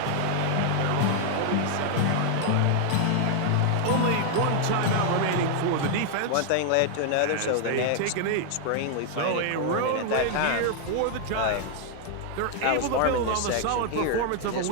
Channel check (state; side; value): different; both; correlation 0.00